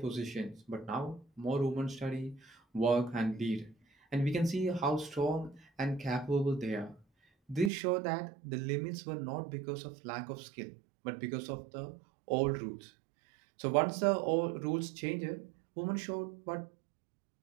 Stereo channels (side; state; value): left; drops out; at 7.7 s